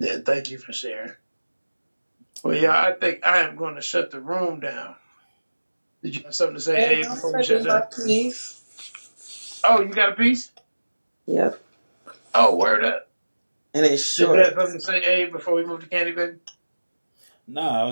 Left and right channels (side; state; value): both; inverted; correlation -1.00